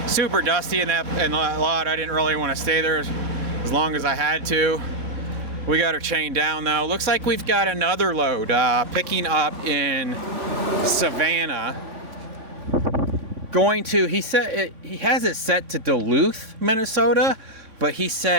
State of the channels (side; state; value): left; late; 3.6 ms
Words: Super dusty in that lot. I didn't really want to stay there as long as I had to. We got her chained down though. Looks like we've got another load picking up in Savannah. Going to, he said he has it set to Duluth, Minnesota, but he